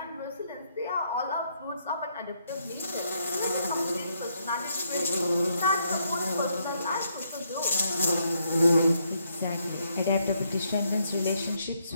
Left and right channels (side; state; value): both; inverted; correlation -0.75